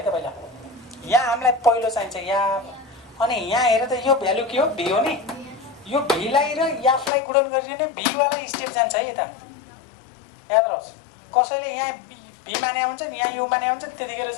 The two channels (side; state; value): right; drops out; at 7.1 s